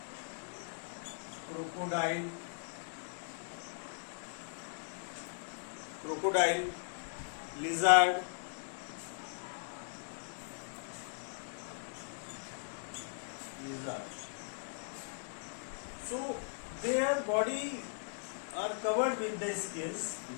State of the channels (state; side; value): silent; right; digital silence